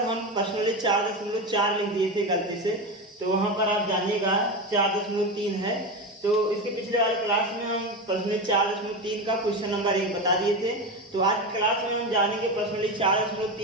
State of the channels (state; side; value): normal; both; correlation 0.19